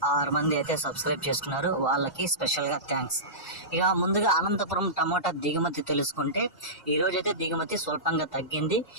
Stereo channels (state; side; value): normal; both; correlation -0.19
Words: 6 మంది అయితే సబ్స్క్రైబ్ చేసుకున్నారు, వాళ్ళకి స్పెషల్గా థ్యాంక్స్. ఇక ముందుగా అనంతపురం టమోటా దిగుమతి తెలుసుకుంటే ఈరోజు అయితే దిగుమతి స్వల్పంగా తగ్గింది.